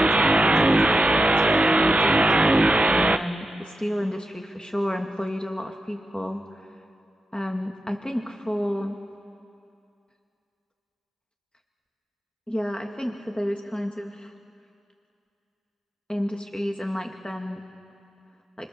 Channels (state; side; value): normal; both; correlation 0.88